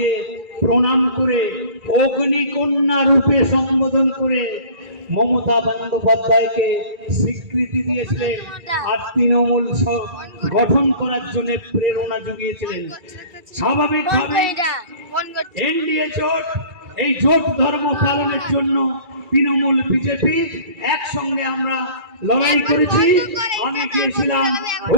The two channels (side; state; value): left; late; 2.3 ms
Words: প্রণাম করে অগ্নিকন্যা রূপে সম্বোধন করে মমতা বন্দ্যোপাধ্যায়কে স্বীকৃতি দিয়েছিলেন আর তৃণমূল গঠন করার জন্য প্রেরণা জুগিয়েছিলেন। স্বাভাবিকভাবে এনডিএ জোট, এই জোট ধর্ম পালনের জন্য তৃণমূল বিজেপি একসঙ্গে আমরা লড়াই করেছি। আমি গিয়েছিলাম